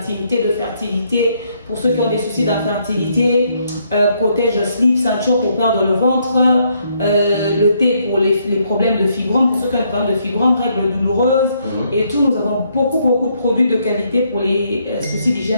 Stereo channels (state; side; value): inverted; both; correlation -0.72